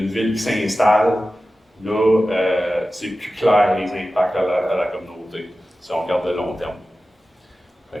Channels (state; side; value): normal; both; correlation 0.94